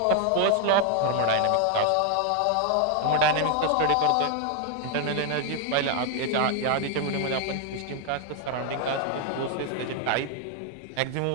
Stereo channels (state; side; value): different; both; correlation 0.00